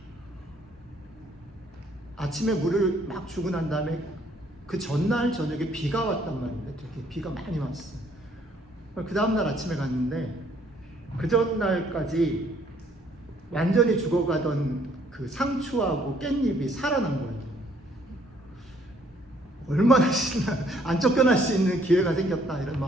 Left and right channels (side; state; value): both; normal; correlation 0.64